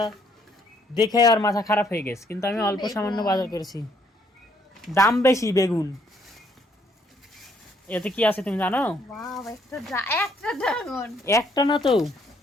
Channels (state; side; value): normal; both; correlation 0.68